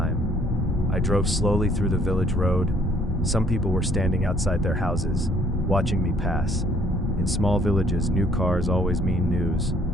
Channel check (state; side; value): normal; both; correlation 0.62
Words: I drove slowly through the village road. Some people were standing outside their houses, watching me pass. In small villages, new cars always mean news.